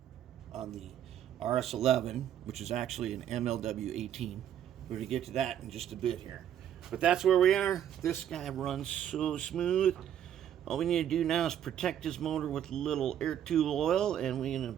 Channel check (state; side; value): quieter; left; 10.3 dB